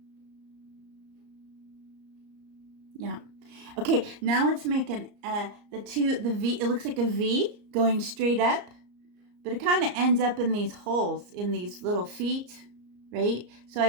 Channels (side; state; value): left; late; 34 ms